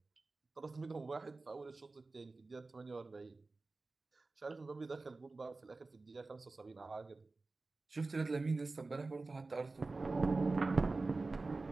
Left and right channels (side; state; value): left; quieter; 3.5 dB